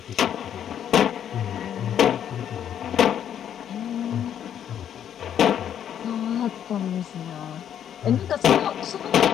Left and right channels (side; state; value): right; quieter; 9.6 dB